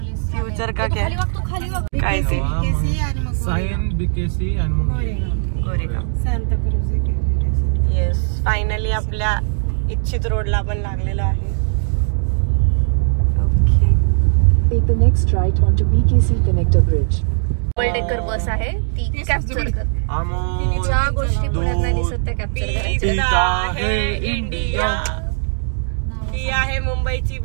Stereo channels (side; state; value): left; silent; 67 dB below the other